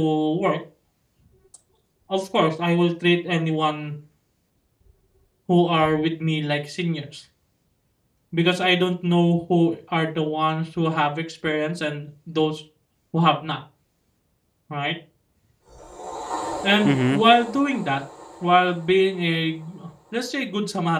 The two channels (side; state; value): both; identical; correlation 1.00